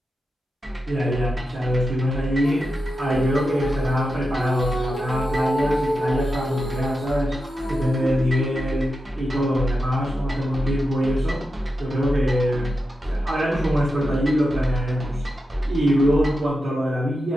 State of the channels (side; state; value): both; normal; correlation 0.89